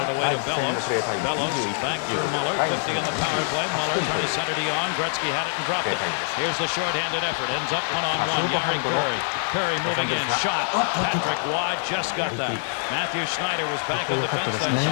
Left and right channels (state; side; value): silent; right; digital silence